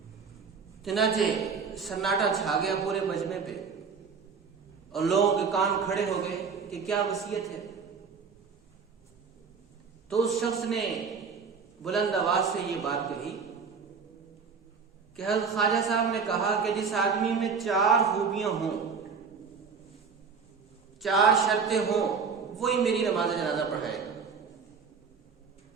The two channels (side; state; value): left; quieter; 5.6 dB